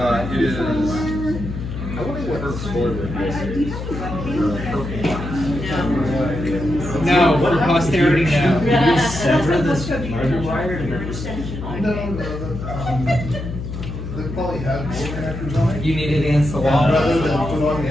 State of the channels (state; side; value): noise; left; hum, 7 dB below the sound